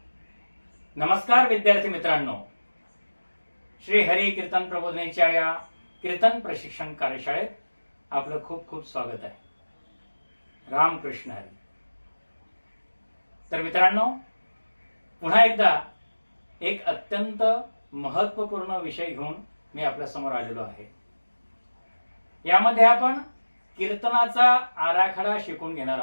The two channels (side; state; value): both; inverted; correlation -1.00